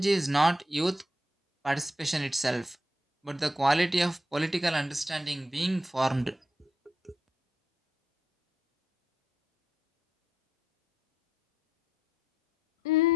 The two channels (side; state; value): both; normal; correlation 0.78